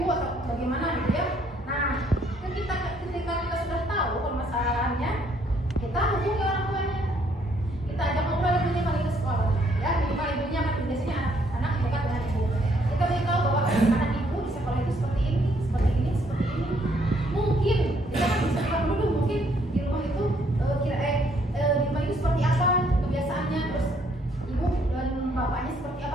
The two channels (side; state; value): both; normal; correlation 0.68